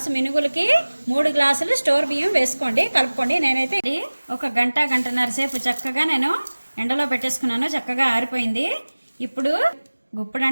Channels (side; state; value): both; inverted; correlation -1.00